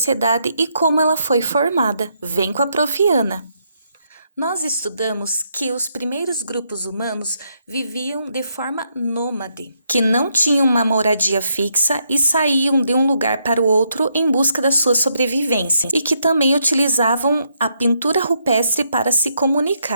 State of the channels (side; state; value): both; inverted; correlation -0.77